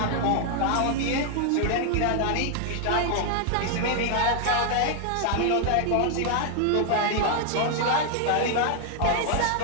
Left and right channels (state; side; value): different; both; correlation 0.00